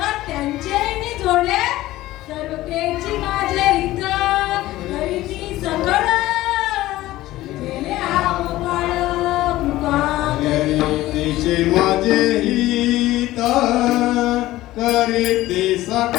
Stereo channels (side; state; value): right; quieter; 16.4 dB